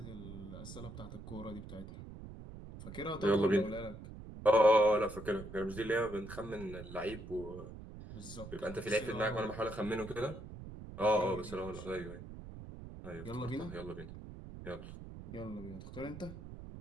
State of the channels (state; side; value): noise; right; rumble, 12 dB below the sound